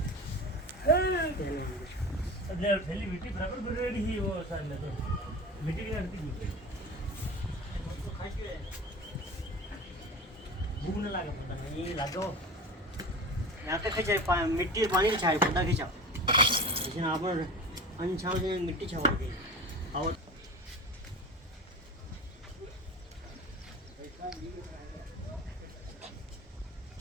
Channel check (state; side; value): normal; both; correlation 0.32